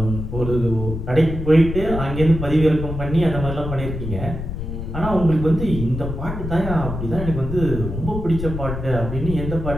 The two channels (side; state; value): left; noise; rumble, 6 dB below the sound